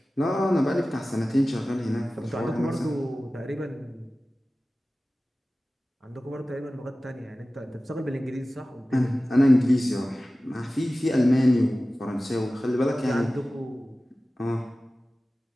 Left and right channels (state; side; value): normal; both; correlation 0.96